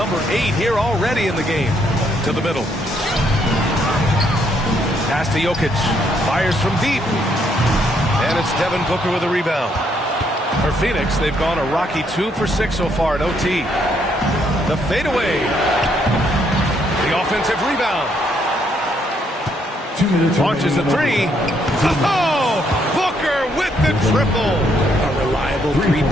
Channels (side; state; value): both; normal; correlation 0.72